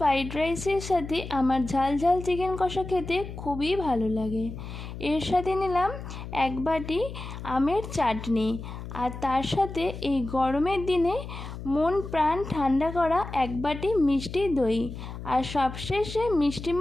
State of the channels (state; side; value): noise; left; hum, 10 dB below the sound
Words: রাইসের সাথে আমার ঝাল ঝাল চিকেন কষা খেতে খুবই ভালো লাগে। এর সাথে নিলাম 1 বাটি আমের চাটনি, আর তার সাথে এই গরমের দিনে মন প্রাণ ঠান্ডা করা 1 বাটি মিষ্টি দই, আর সবশেষে